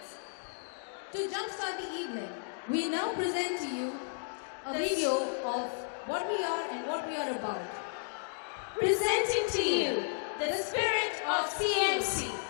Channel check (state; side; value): silent; right; digital silence